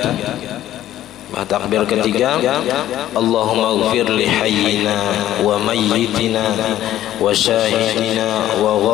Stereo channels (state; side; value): quieter; right; 12.9 dB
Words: Takbir ketiga, Allahumma ighfir li hayyina wa mayyitina wa syahidina wa